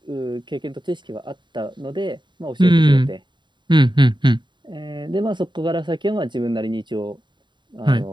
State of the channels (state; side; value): late; left; 0.22 ms